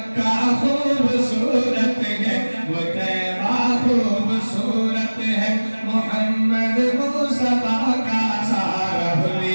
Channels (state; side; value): inverted; both; correlation -1.00